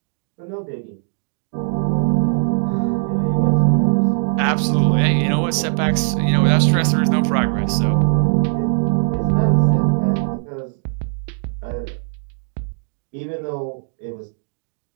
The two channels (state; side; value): silent; left; digital silence